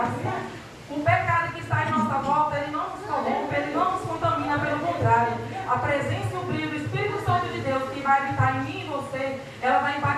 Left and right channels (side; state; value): both; identical; correlation 1.00